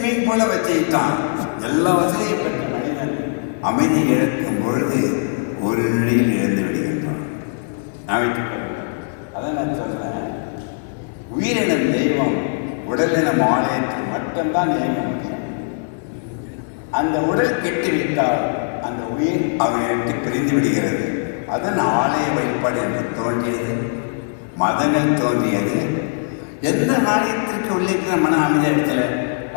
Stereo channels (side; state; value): right; silent; digital silence